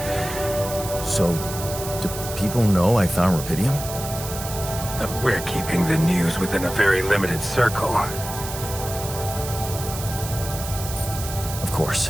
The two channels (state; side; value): noise; right; hiss, 9 dB below the sound